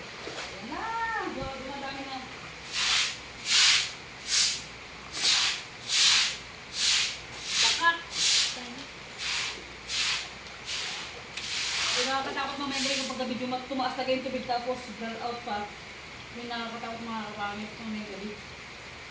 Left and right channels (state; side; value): identical; both; correlation 1.00